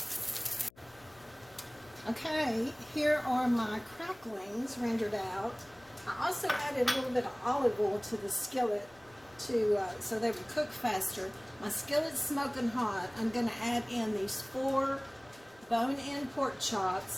Okay, here are my cracklings rendered out. I also added a little bit of olive oil to the skillet so they would cook faster. My skillet's smoking hot. I'm going to add in these 4 bone-in pork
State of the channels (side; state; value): left; noise; hum, 27 dB below the sound